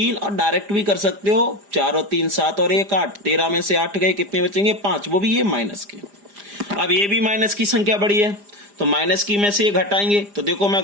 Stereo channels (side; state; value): left; late; 4.9 ms